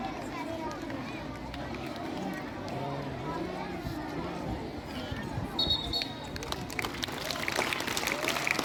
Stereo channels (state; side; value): identical; both; correlation 1.00